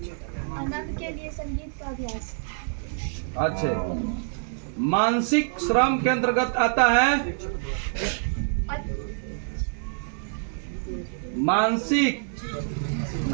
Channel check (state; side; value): silent; left; digital silence